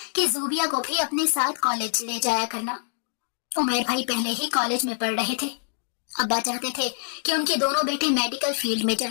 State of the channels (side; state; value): right; silent; digital silence